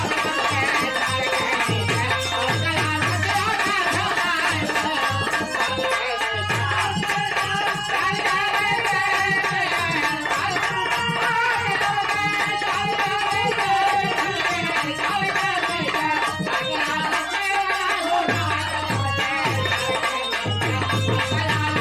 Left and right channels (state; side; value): noise; left; hum, 25 dB below the sound